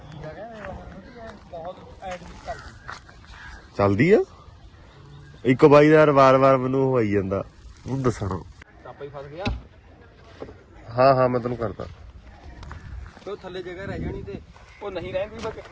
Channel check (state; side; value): identical; both; correlation 1.00